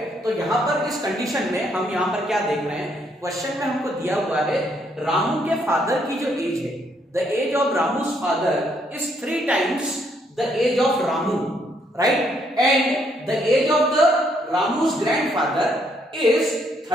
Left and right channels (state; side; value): normal; both; correlation 0.71